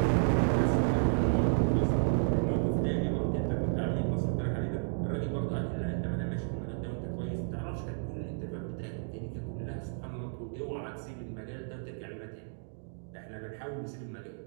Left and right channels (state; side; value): silent; left; digital silence